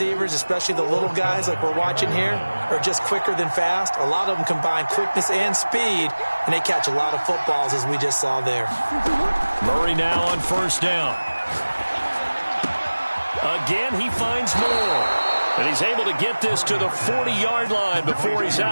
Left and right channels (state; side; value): inverted; both; correlation -1.00